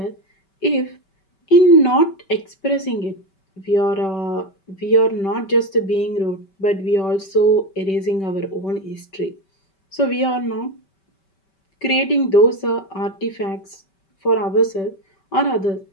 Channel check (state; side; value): late; right; 5.2 ms